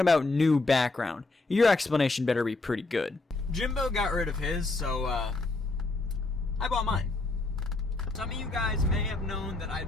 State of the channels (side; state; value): right; quieter; 3.2 dB